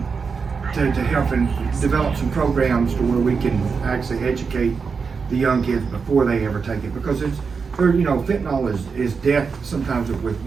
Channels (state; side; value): quieter; left; 5.3 dB